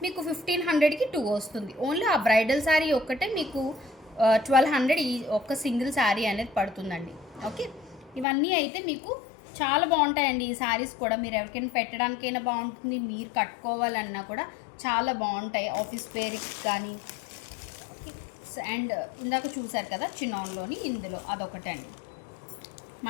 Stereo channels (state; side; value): drops out; right; at 8.2 s